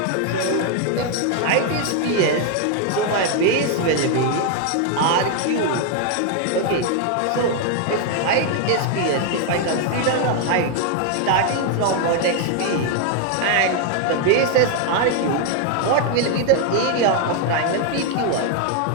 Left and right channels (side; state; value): both; different; correlation 0.00